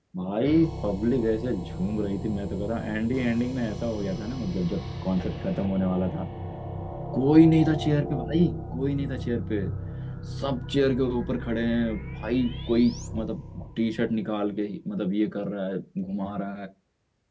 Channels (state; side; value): identical; both; correlation 1.00